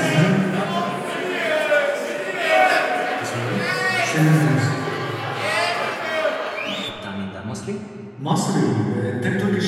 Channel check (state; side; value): identical; both; correlation 1.00